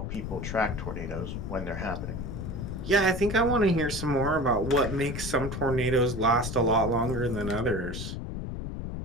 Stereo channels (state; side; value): noise; left; rumble, 6 dB below the sound